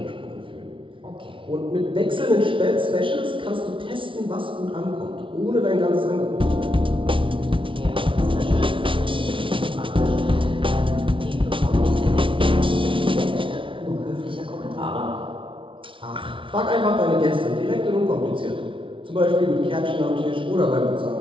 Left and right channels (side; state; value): left; late; 0.25 ms